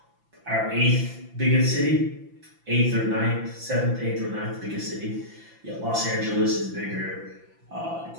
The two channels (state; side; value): late; left; 5.9 ms